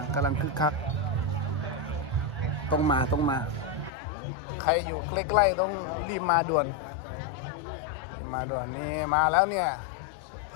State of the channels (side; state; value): right; drops out; at 3.9 s